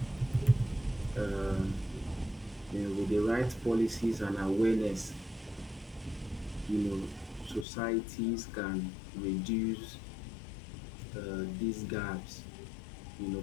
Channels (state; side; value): drops out; right; at 7.7 s